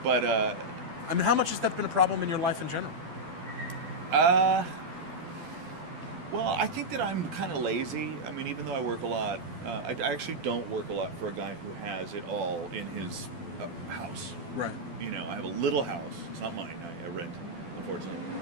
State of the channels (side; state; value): left; late; 12 ms